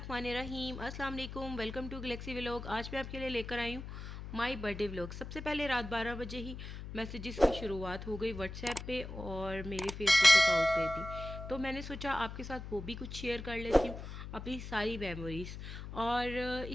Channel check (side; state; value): left; noise; hum, 9 dB below the sound